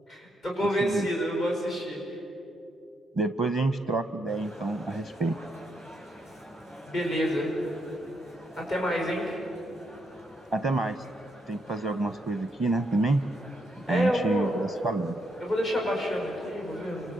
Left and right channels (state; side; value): normal; both; correlation 0.78